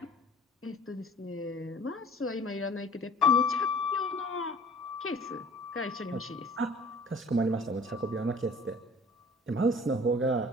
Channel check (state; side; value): normal; both; correlation 0.49